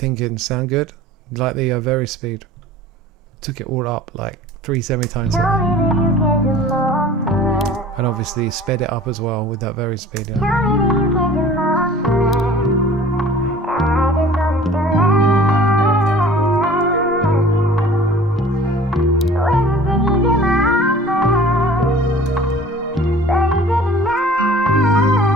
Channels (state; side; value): normal; both; correlation 0.45